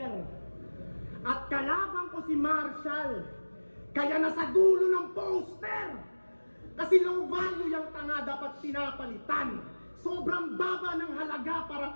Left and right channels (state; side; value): inverted; both; correlation -1.00